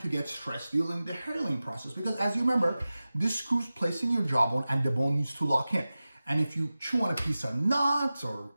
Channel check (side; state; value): both; inverted; correlation -0.96